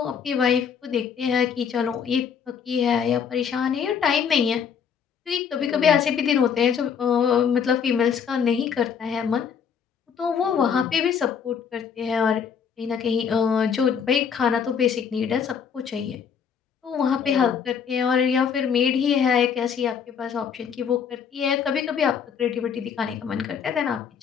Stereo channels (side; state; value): right; quieter; 7.1 dB